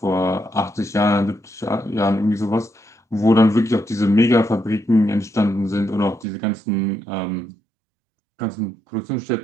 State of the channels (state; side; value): drops out; left; at 6.2 s